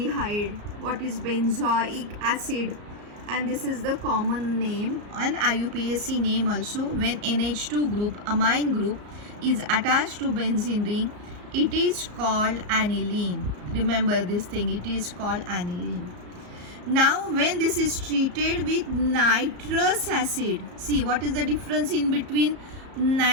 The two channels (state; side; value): late; left; 34 ms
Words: what is benzoic acid, and this is the common name and IUPAC name also. When NH2 group, amine group, is attached to benzene ring, it is called aniline. Remember this thing, it is called aniline. Now when this is treated with nitrous acid, see what is the difference in between